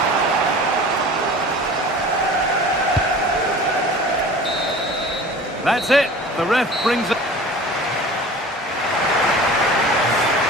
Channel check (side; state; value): both; normal; correlation 0.41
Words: That's it. The ref brings it.